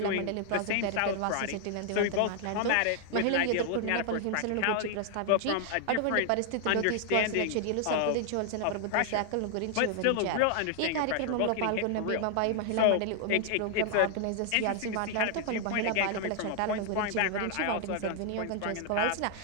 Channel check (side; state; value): both; different; correlation 0.00